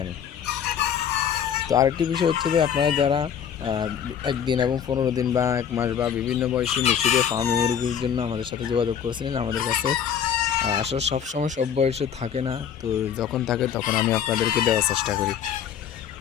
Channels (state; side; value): quieter; right; 8.5 dB